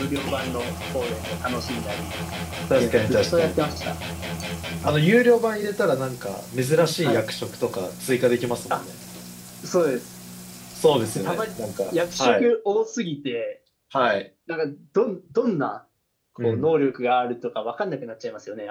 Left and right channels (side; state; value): both; identical; correlation 1.00